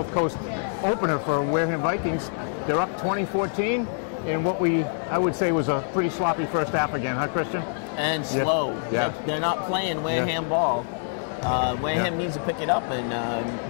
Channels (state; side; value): silent; right; digital silence